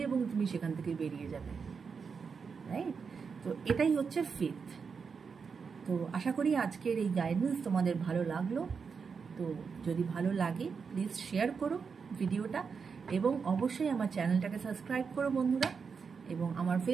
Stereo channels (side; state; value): left; quieter; 5.7 dB